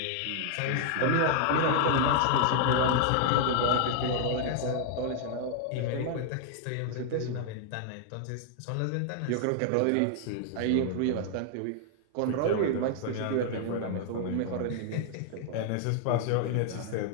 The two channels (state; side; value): different; both; correlation 0.00